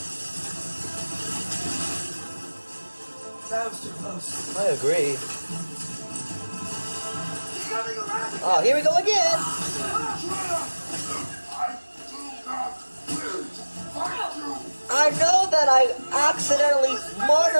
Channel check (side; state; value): both; inverted; correlation -1.00